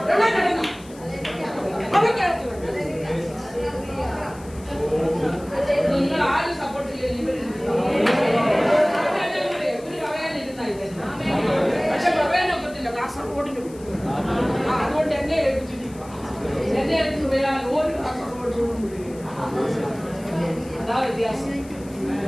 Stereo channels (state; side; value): noise; left; hiss, 22 dB below the sound